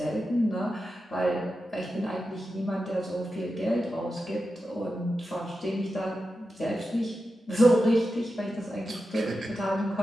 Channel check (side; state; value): both; normal; correlation 0.90